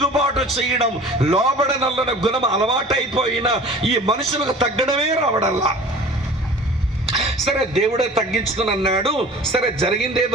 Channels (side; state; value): both; normal; correlation 0.43